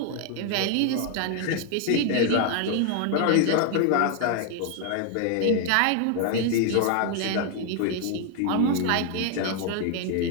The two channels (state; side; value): different; both; correlation 0.00